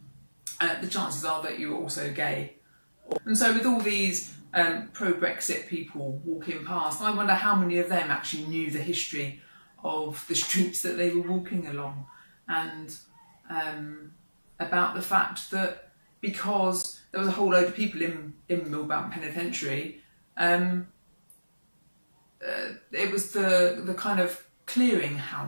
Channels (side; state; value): both; inverted; correlation -1.00